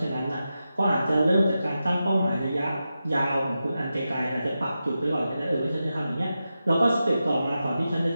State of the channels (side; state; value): both; inverted; correlation -0.91